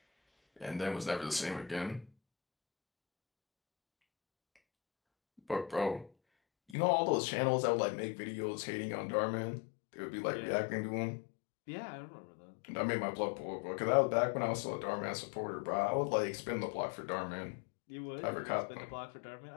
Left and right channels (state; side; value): drops out; right; at 6.8 s